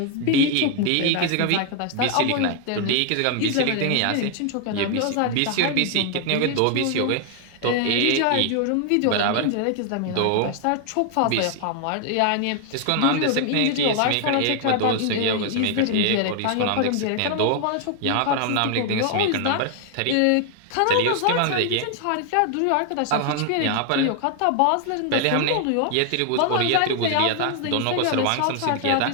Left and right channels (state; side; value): different; both; correlation 0.00